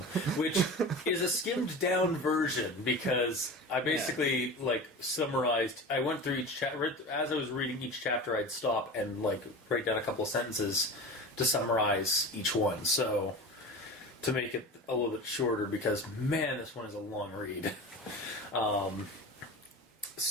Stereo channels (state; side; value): normal; both; correlation 0.32